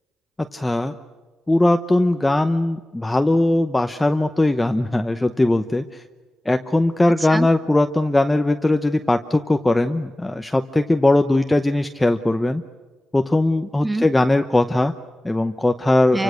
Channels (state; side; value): normal; both; correlation 0.98